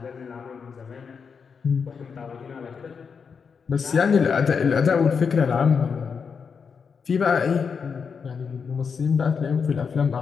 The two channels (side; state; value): right; quieter; 5.9 dB